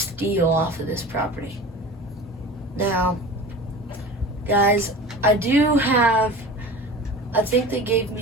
off of this property. Now, guys, I think they gave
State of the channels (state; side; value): normal; both; correlation 0.35